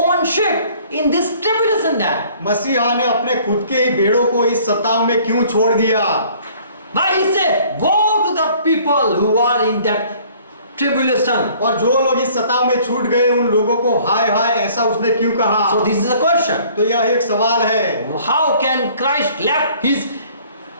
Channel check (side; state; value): both; inverted; correlation -0.55